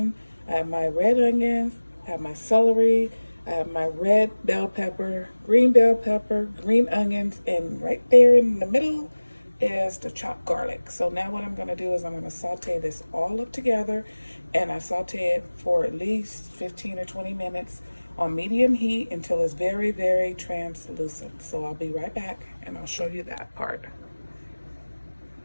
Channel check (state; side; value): inverted; both; correlation -1.00